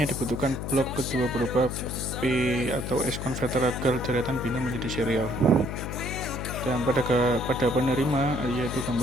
dibutuhkan blok kedua berupa P atau S converter agar deretan biner menjadi serial. Dan pada penerima, yaitu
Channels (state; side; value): noise; left; hum, 5 dB below the sound